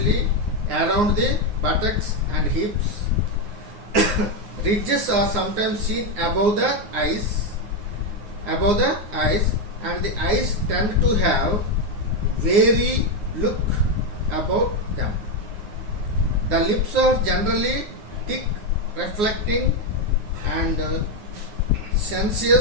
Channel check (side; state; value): left; late; 9.6 ms